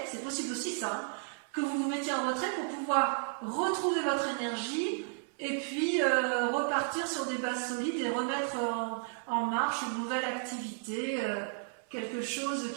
c'est possible aussi ça, hein, que vous vous mettiez en retrait pour pouvoir retrouver votre énergie et puis repartir sur des bases solides et remettre en marche une nouvelle activité, quelque chose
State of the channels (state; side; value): silent; left; 56 dB below the other